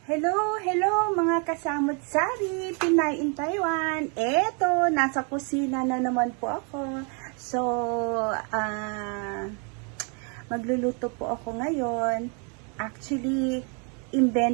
Hello mga kasamot-sari, Pinay in Taiwan. Eto, nasa kusina na naman po ako. So, magluluto po ako ngayon. Actually,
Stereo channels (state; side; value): quieter; left; 37.4 dB